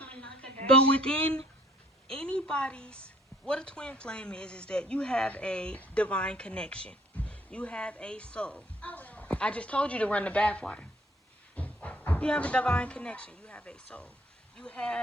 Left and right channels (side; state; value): both; normal; correlation 0.61